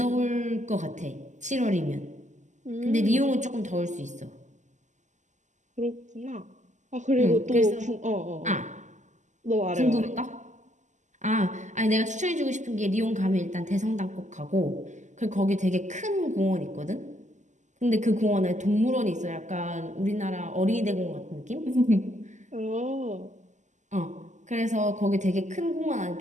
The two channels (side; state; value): left; late; 0.34 ms